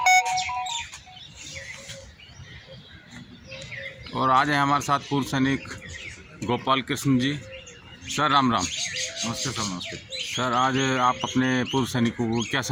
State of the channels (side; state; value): both; identical; correlation 1.00